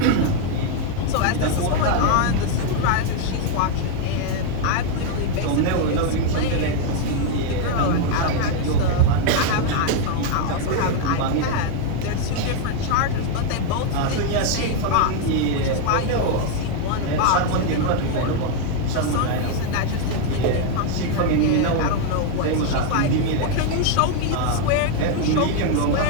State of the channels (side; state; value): both; different; correlation 0.01